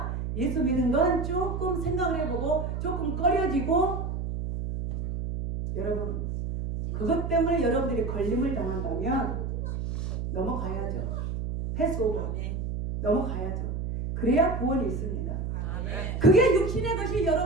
예수 믿는 건 조금 생각을 해보고 조금 꺼려지고 여러분 그것 때문에 여러분들이 걸림을 당한다면 넘어가야죠. 패스오버 넘어가야죠. 그래야 구원이 있습니다. 그게 육신의 것이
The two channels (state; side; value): noise; right; hum, 3 dB below the sound